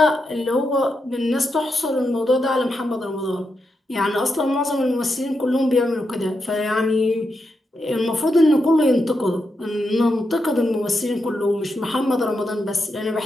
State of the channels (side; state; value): both; normal; correlation 0.85